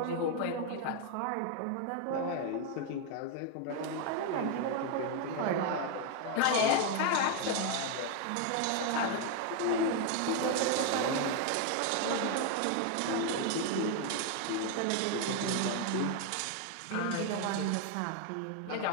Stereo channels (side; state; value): both; different; correlation 0.01